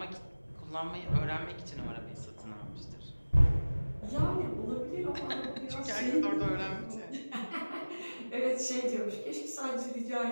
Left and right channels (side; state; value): both; inverted; correlation -1.00